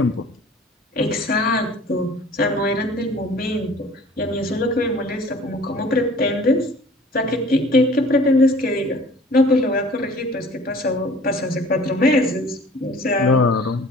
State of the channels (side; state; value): both; normal; correlation 0.49